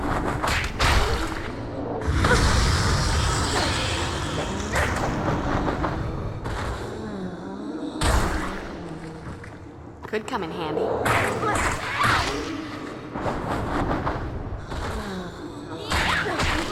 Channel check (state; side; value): identical; both; correlation 1.00